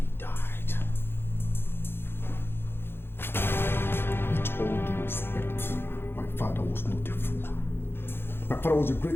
died. With all due respect, my father was not a fool. My father was a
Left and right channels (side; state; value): right; late; 0.11 ms